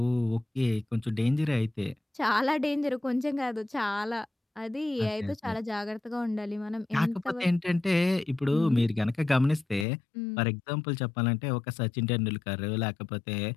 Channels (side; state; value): right; drops out; at 9.9 s